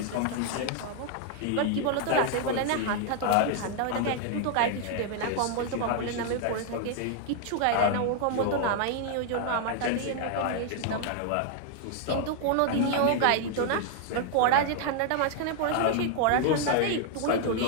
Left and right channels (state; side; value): different; both; correlation 0.00